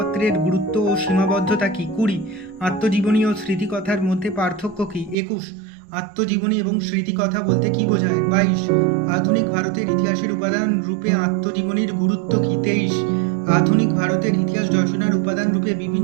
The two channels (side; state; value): left; drops out; at 5.2 s